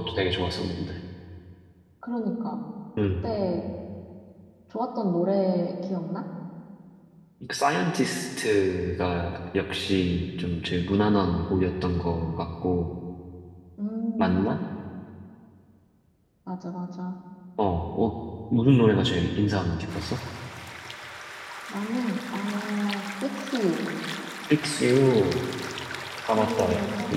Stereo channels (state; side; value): identical; both; correlation 1.00